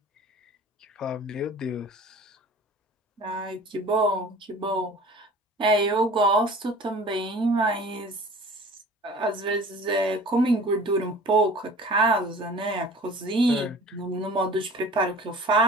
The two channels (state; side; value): normal; both; correlation 0.44